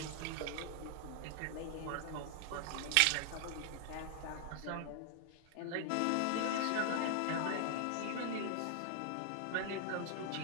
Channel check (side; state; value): both; different; correlation 0.00